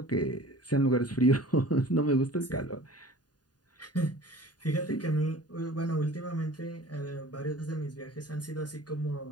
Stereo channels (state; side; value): late; right; 0.69 ms